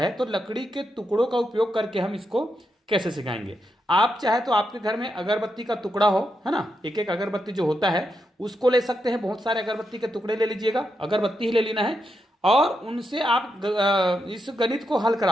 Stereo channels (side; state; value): both; normal; correlation 0.84